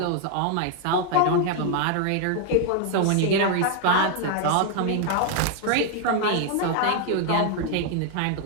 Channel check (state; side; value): different; both; correlation 0.00